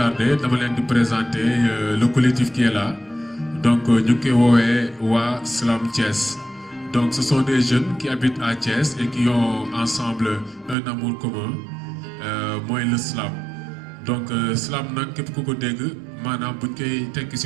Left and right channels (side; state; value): left; drops out; at 10.8 s